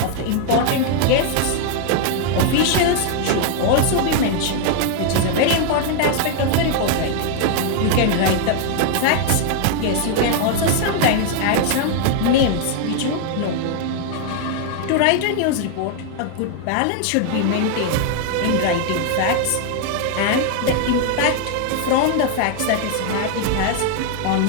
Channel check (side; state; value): both; different; correlation 0.00